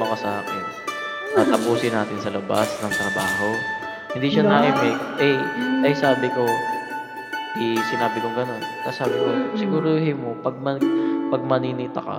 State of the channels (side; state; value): both; identical; correlation 1.00